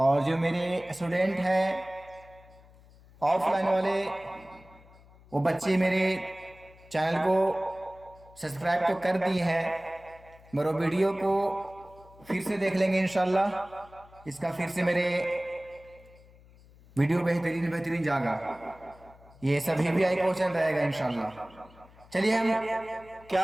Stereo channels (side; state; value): left; noise; hum, 25 dB below the sound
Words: اور جو میرے اسٹوڈنٹ ہیں آف لائن والے، وہ بچے میرے چینل کو سبسکرائب تو کر دی ہیں، مگر وہ ویڈیو کو پھر سے دیکھ لیں گے انشاءاللہ۔ اس کا پھر سے میرے ویڈیو بہترین جاگا، یہ سبھی بھی آئی کوشچن رہے گا انشاءاللہ۔ چلیے ہم کیا